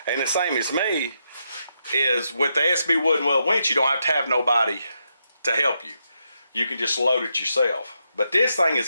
the same as me, is with the SB wooden weld winch, you don't have to have nobody to help you. You can just load it yourself. But this thing has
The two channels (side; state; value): both; inverted; correlation -0.82